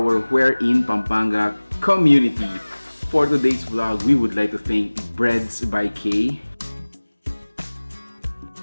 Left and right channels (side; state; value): both; inverted; correlation -1.00